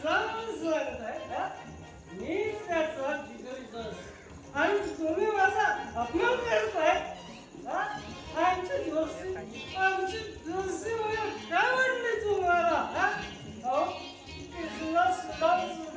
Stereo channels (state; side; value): identical; both; correlation 1.00